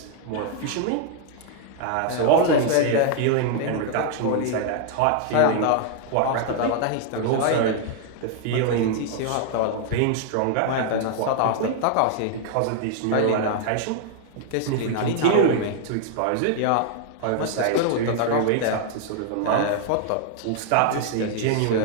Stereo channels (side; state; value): both; different; correlation 0.00